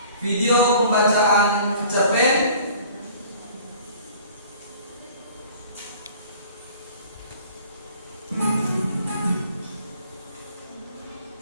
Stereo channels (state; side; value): inverted; both; correlation -0.49